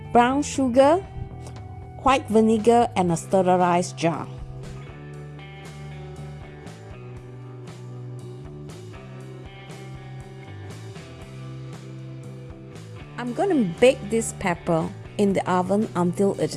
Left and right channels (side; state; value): both; identical; correlation 1.00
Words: brown sugar, white vinegar, and a sterilized jar. I'm going to bake this pepper in the oven until it